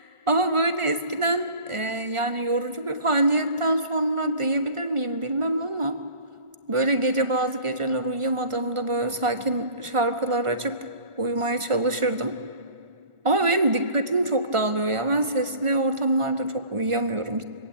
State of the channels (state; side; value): late; left; 1.4 ms